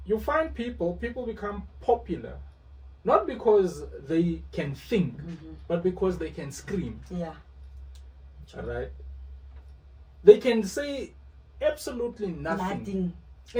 You find people become popular, not because they can think, but because they can scream. Yeah. All right. They can say absolutely nothing.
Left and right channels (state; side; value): identical; both; correlation 1.00